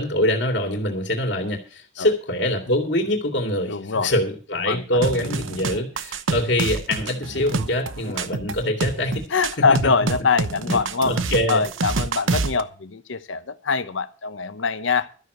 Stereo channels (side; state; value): both; normal; correlation -0.04